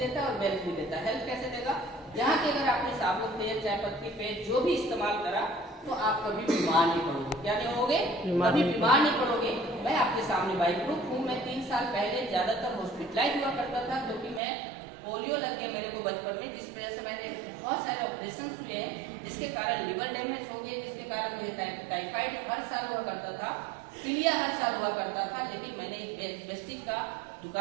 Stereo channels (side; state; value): left; drops out; at 14.4 s